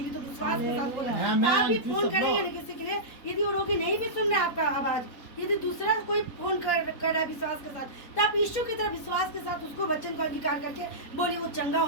तो विश्वास के साथ बोला। आप भी फोन करेंगे ना किसी के लिए, यदि वो रोगी नहीं भी सुन रहा है आपका आवाज, यदि दूसरा कोई फोन कर रहा है विश्वास के साथ, तो आप यीशु की तरह विश्वास के साथ उसको वचन का अंगीकार करके बोलिए, वो चंगा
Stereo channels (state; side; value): late; right; 3.8 ms